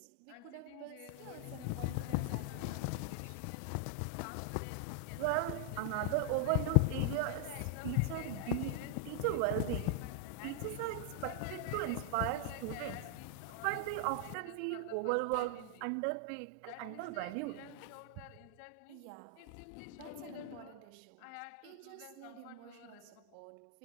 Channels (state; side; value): different; both; correlation 0.00